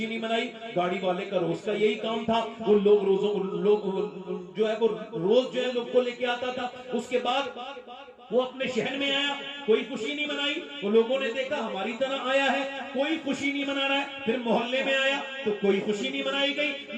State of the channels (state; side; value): identical; both; correlation 1.00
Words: نہیں منائی۔ گاڑی والے کا روز کا یہی کام تھا، وہ لوگ جو ہے وہ روز جو ہے لوگ کو لے کے آتا تھا۔ اس کے بعد وہ اپنے شہر میں آیا، کوئی خوشی نہیں منائی۔ وہ لوگوں نے دیکھا ہماری طرح آیا ہے، کوئی خوشی نہیں منا رہا ہے۔ پھر محلے میں آیا تو کوئی خوشی نہیں منائی گئی،